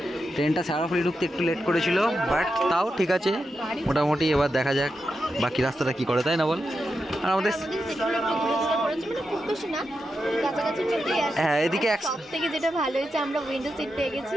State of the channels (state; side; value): normal; both; correlation 0.88